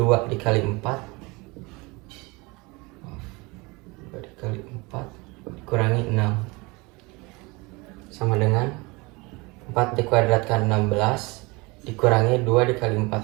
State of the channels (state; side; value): quieter; left; 25.5 dB